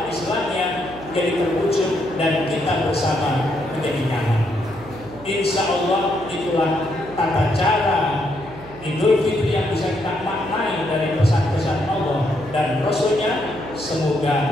Islamnya jadi terwujud dan kita bersama menjadi nyaman. Insya Allah itulah tata cara Idul Fitri yang bisa kita maknai dari pesan-pesan Allah dan Rasulnya.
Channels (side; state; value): right; noise; hum, 18 dB below the sound